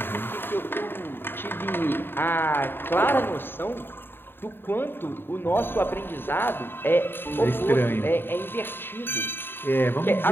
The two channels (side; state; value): right; late; 0.10 ms